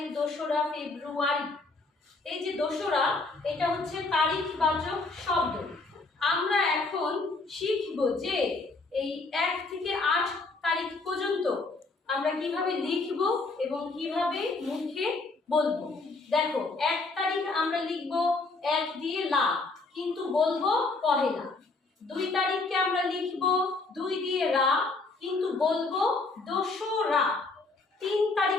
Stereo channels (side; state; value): right; quieter; 3.6 dB